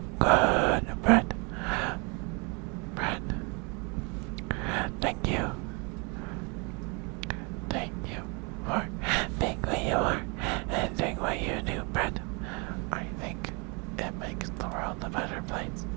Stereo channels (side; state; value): left; quieter; 31.8 dB